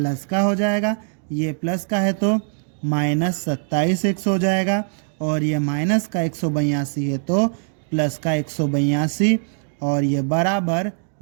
का हो जाएगा, ये प्लस का है तो माइनस 27x हो जाएगा, और ये माइनस का 182 है तो प्लस का 182, और ये बराबर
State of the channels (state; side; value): silent; left; digital silence